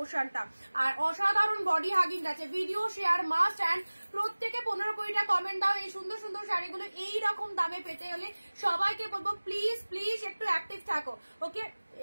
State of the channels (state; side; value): inverted; both; correlation -1.00